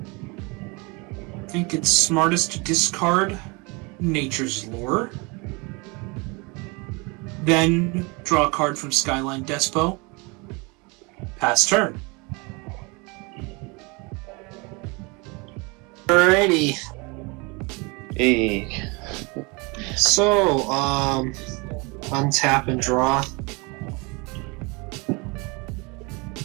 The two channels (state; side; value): quieter; left; 28.4 dB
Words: think it's smartest to discard Nature's Lore. Then draw a card from Skyline Despo. Pass turn. Alrighty. Hey. So, untap and draw.